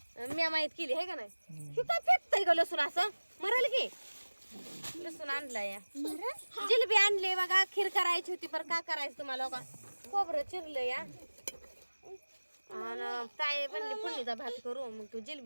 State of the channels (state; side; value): inverted; both; correlation -1.00